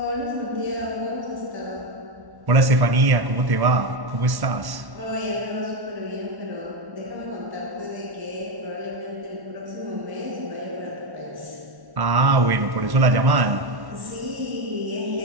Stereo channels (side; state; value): left; late; 1.1 ms